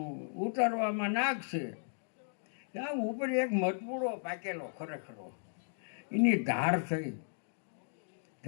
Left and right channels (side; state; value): right; silent; digital silence